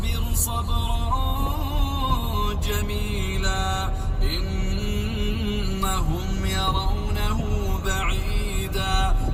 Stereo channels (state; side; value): identical; both; correlation 1.00